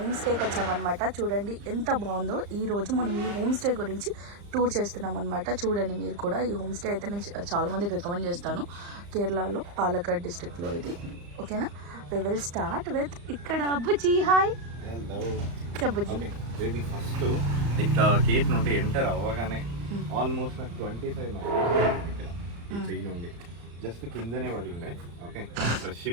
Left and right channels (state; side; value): late; left; 35 ms